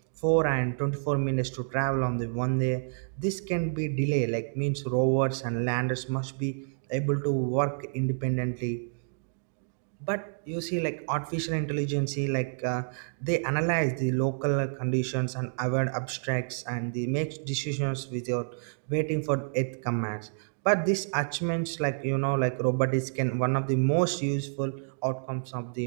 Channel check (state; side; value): silent; left; digital silence